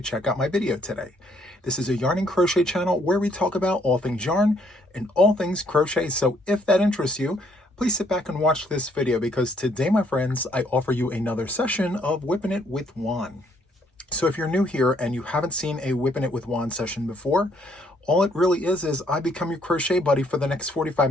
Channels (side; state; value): both; normal; correlation 0.68